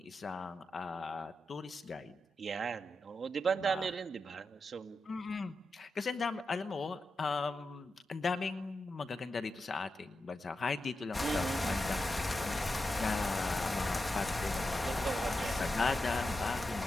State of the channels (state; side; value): normal; both; correlation 0.89